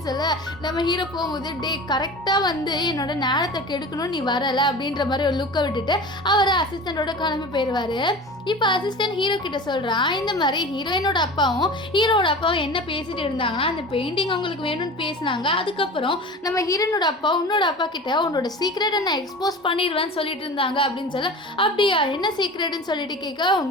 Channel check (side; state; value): both; normal; correlation 0.35